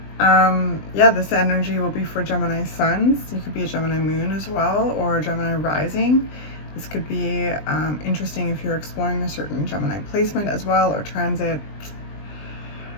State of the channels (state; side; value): late; right; 20 ms